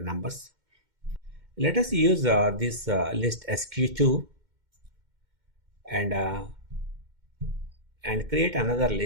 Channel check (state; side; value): late; left; 2.1 ms